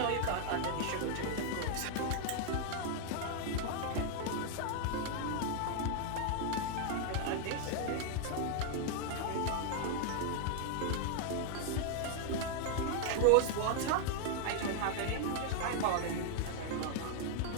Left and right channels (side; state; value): both; different; correlation 0.00